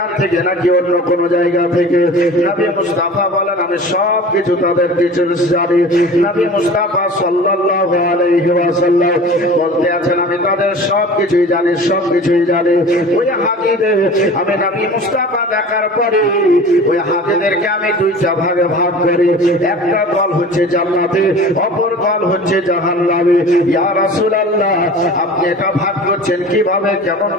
থেকে নাকি অন্য কোনো জায়গা থেকে। নবী মুস্তাফা বলেন আমি সব কিছু তাদের ডিটেইলস জানি। নবী মুস্তাফা সাল্লাল্লাহু আলাইহি ওয়াসাল্লাম বলতে আছেন আমি তাদের সবকিছুই জানি, সবকিছুই জানি। ওই হাজীদের আমি নবী মুস্তাফা দেখার পরে ওই হাজীদেরকে আমি দুইটা ভাগে ভাগ করি, একটা দল হচ্ছে জান্নাতে, অপর দল হচ্ছে জাহান্নামে। ইয়া রাসূলুল্লাহ আপনি এটা ভাগ করছেন কিভাবে, কেমন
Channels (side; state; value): both; normal; correlation 0.40